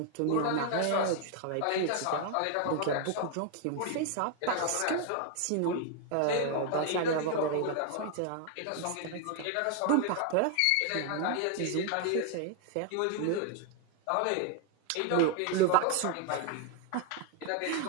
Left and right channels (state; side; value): different; both; correlation 0.00